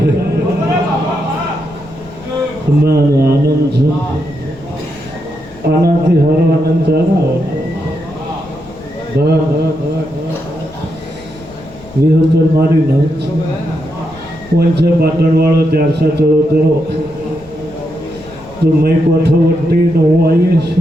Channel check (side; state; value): left; noise; rumble, 22 dB below the sound